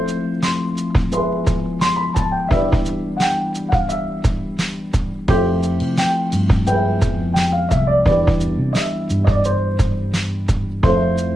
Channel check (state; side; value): normal; both; correlation 0.90